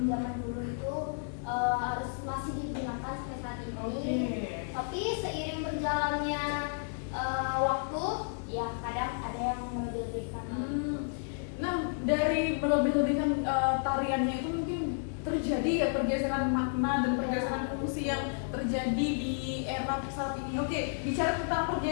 zaman dulu itu harus masih digunakan sampai saat ini. Oke. Tapi seiring berjalannya waktu, ya kadang ada yang melebih-lebihkan. Nah, dari melebih-lebihkan tariannya itu mungkin terjadi ya pergeseran makna dan pergeseran fungsi yang terjadi di era saat ini. Oke, bicara tentang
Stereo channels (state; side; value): silent; right; digital silence